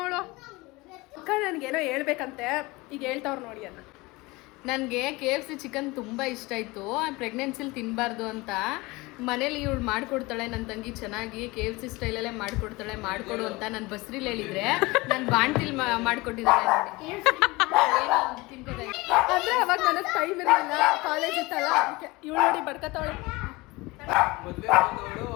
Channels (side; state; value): right; quieter; 22.8 dB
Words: ಅಕ್ಕ ನನಗೇನೋ ಹೇಳ್ಬೇಕಂತೆ, ಈಗ ಹೇಳ್ತಾವ್ರು ನೋಡಿ ಅನ್ನ. ನನಗೆ KFC ಚಿಕನ್ ತುಂಬ ಇಷ್ಟ ಆಯಿತು. ಪ್ರೆಗ್ನೆನ್ಸಿಲಿ ತಿನ್ನಬಾರ್ದು ಅಂತ ಮನೇಲಿ ಇವಳು ಮಾಡಿಕೊಡ್ತಾಳೆ, ನನ್ನ ತಂಗಿ ಚೆನ್ನಾಗಿ KFC ಸ್ಟೈಲಲ್ಲೇ ಮಾಡಿಕೊಡ್ತಾಳೆ, ಮಾಡಿಕೊಡು ಅಂತ ನಾನು ಬಸ್ರಿಲಿ ಹೇಳಿದರೆ ನಾನು ಬಾಣ್ತಿಲಿ ಮಾಡಿಕೊಟ್ಟಿದ್ದಾಳೆ ನೋಡಿ. ಅಂದರೆ ಅವಾಗ ನನಗೆ ಟೈಮ್ ಇರಲಿಲ್ಲ, ಕಾಲೇಜ್ ಇತ್ತಲ್ಲ, ಅದಕ್ಕೆ ಇವಳು ನೋಡಿ ಬಡ್ಕತ್ತಾವಳೆ. ಮದ್ವೆ ಬಂದವಳು